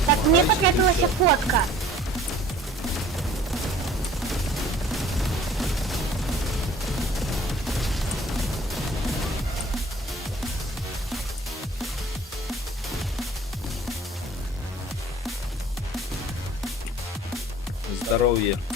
Так, мне потребовалась фотка. Здоровье.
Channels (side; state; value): both; normal; correlation 0.50